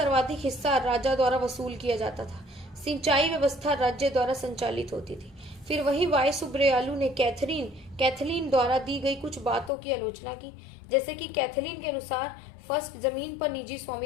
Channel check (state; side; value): drops out; right; at 9.7 s